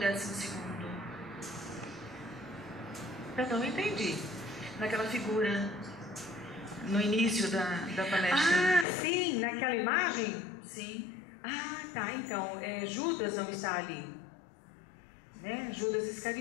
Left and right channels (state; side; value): drops out; right; at 8.8 s